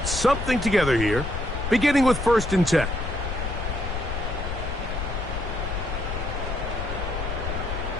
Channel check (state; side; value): noise; left; rumble, 4 dB below the sound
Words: something together here, beginning with 1st and 10.